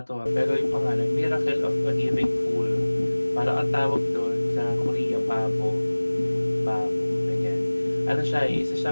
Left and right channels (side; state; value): both; inverted; correlation -1.00